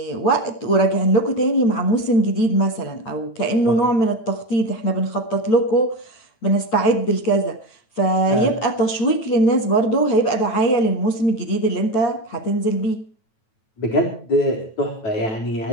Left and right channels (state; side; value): late; right; 9.1 ms